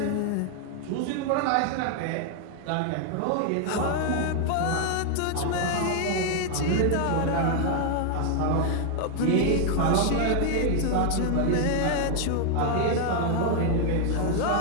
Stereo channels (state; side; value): different; both; correlation 0.00